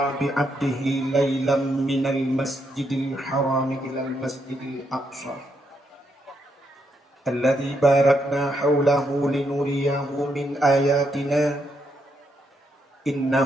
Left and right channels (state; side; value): normal; both; correlation 0.78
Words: bi'abdihi laylan minal masjidil haram ilal masjidil aqsa. Alladzi barakna hawlahu linuriyahu min ayatina.